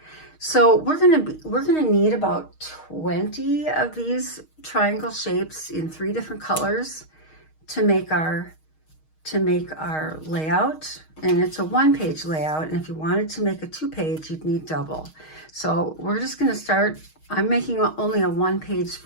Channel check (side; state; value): right; late; 6.4 ms